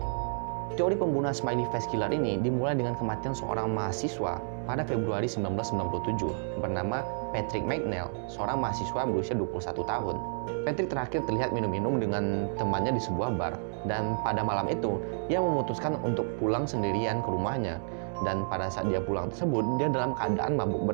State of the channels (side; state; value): left; silent; digital silence